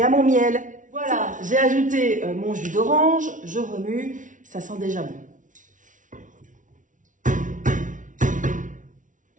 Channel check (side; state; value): left; late; 0.37 ms